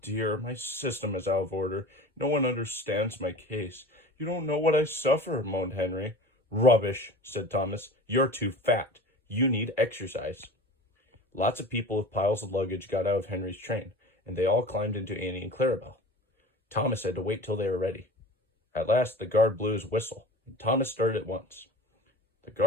my system is out of order. No one understands my case. You don't know what I suffer," moaned Henry. "Rubbish," said Thomas. "You're too fat. You need exercise." Lots of people with piles of luggage got out of Henry's train, and they all climbed into Annie and Clarabelle. Thomas had to wait till they were ready. At last, the guard blew his whistle, and Thomas started at once. The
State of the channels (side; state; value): both; normal; correlation 0.38